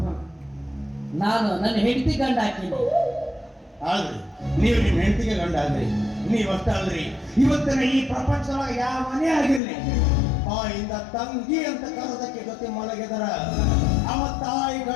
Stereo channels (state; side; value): drops out; right; at 9.6 s